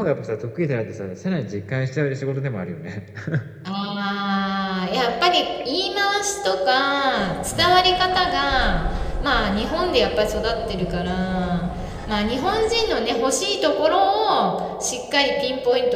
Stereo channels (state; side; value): identical; both; correlation 1.00